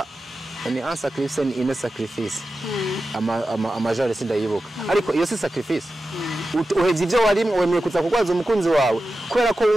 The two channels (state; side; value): normal; both; correlation 0.93